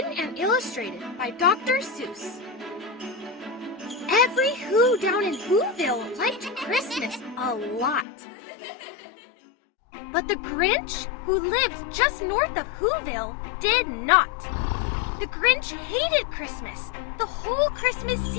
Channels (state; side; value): drops out; right; at 8.1 s